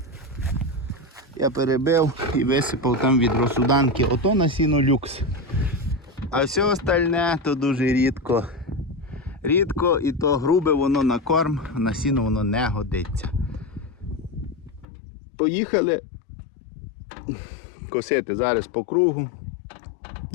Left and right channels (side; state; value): right; drops out; at 14.9 s